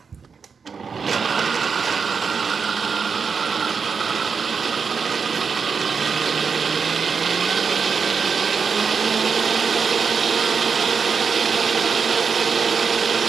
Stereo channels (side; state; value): left; quieter; 5.7 dB